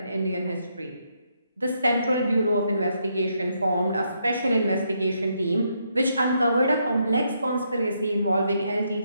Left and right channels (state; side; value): inverted; both; correlation -0.77